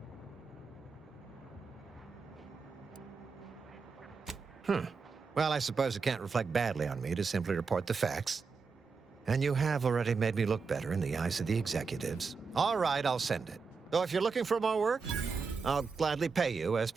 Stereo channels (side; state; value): left; quieter; 5.0 dB